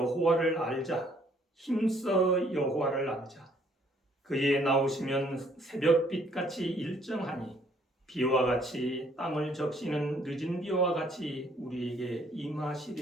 알자, 힘써 여호와를 알자. 그의 나오시면 새벽빛같이 일정하니 비와 같이 땅을 적시는 늦은 비와 같이 우리에게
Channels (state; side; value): normal; both; correlation 0.64